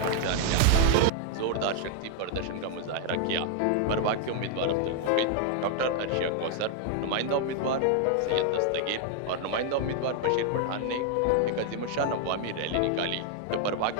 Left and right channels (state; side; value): different; both; correlation 0.00